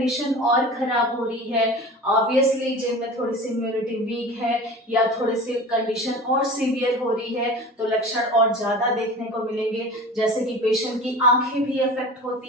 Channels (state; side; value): normal; both; correlation 0.37